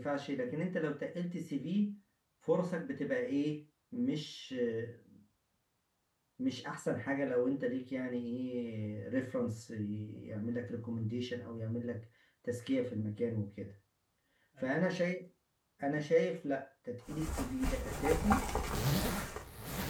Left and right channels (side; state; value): both; identical; correlation 1.00